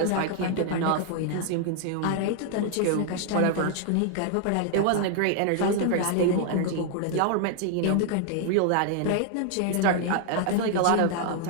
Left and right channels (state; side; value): different; both; correlation 0.00